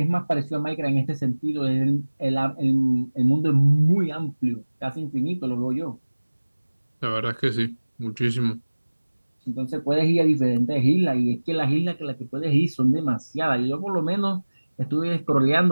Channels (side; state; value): both; inverted; correlation -1.00